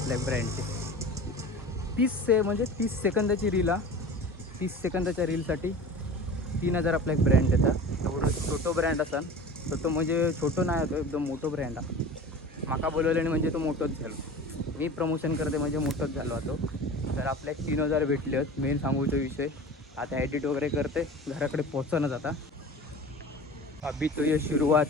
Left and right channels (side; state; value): both; normal; correlation 0.37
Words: ब्रँडचे 30 सेकंदाची रील 30 सेकंदाच्या रीलसाठी 3000 आपला एक ब्रँड येतात एवढं छोटं ब्रँड असाल तर तो म्हणजे छोटं नाही होतो एकदम मोठं ब्रँड आहे माका बोलवल्याने म्हणजे तो मोठंच झालो मी प्रमोशन करते म्हणजे मोठंच झालो होतो तर आपल्या 3000 भेटले आहेत मेन सांगूचा विषय आता एडिट वगैरे करते घराकडे पोहोचणं जाता अभी तो ये